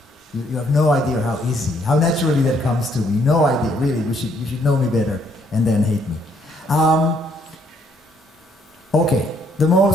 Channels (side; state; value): both; normal; correlation 0.68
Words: You have no idea how easy, how naturally that comes to me. No idea, really. You should know me better and then hate me. Okay, the